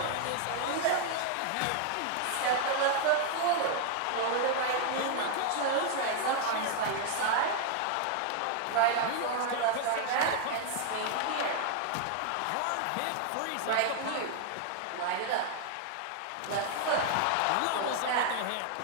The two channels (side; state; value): both; different; correlation 0.00